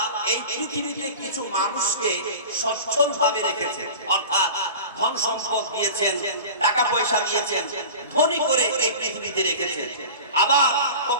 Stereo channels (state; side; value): inverted; both; correlation -0.35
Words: এই পৃথিবীতে কিছু মানুষকে সচ্ছল ভাবে রেখেছেন, অর্থাৎ ধন সম্পদ দিয়েছেন, টাকা পয়সা দিয়েছেন, ধনী করে এই পৃথিবীতে রেখেছেন। আবার